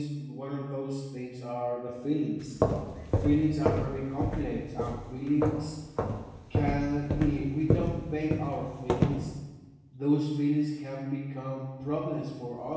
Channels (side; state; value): both; identical; correlation 1.00